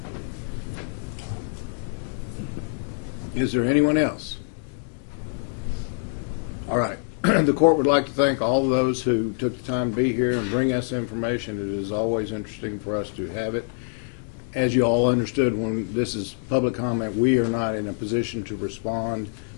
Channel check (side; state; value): right; silent; digital silence